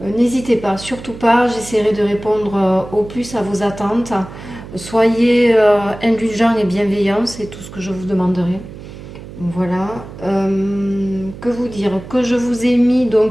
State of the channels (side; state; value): right; noise; hum, 14 dB below the sound